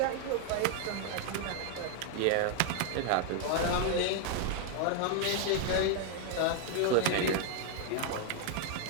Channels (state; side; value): different; both; correlation 0.00